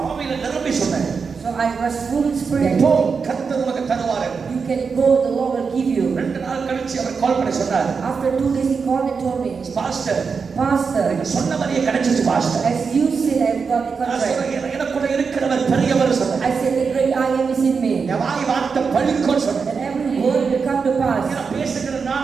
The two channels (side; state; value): left; quieter; 5.4 dB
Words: ஆவியில நிரம்பி சொன்னேன். So I was full in spirit. இப்போ கர்த்தர் உனக்கு தருவார். You can go, the Lord will give you. 2 நாள் கழிச்சு அவர் கால் பண்ணி சொன்னார். After 2 days he called and told me, pastor, Pastor, சொன்ன மாதிரியே கிடைச்சிச்சு pastor. as you said, I've got the நான் contract. சொன்னேன், எனக்குள்ள இருக்கிறவர் பெரியவர் சொன்னேன். I said, the great I am is in me. என் வாய் வார்த்தை பலிக்கும் சொன்னேன். And every word will come to pass. நான் பேசுகிற